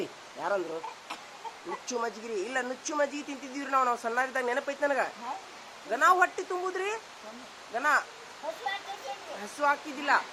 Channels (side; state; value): both; identical; correlation 1.00